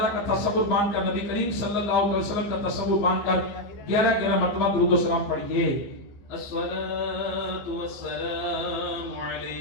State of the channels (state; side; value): late; right; 15 ms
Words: کا تصور باندھ کر نبی کریم صلی اللہ علیہ وسلم کا تصور باندھ کر 11 مرتبہ درود و سلام پڑھیے۔ الصلاة والسلام